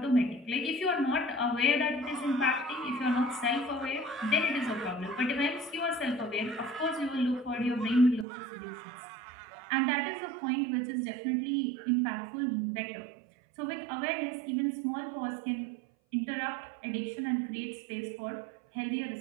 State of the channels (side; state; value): left; drops out; at 8.2 s